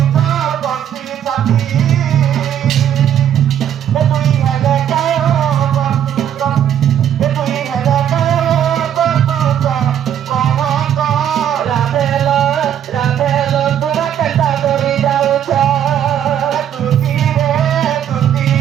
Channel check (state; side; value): quieter; left; 9.9 dB